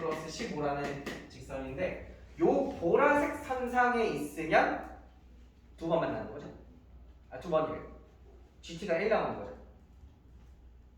15라는 직선인데 요 보라색 선상에 있으면 두 번 만나는 거죠. 두 번이래요. GT가 1 나오는 거죠.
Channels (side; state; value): both; identical; correlation 1.00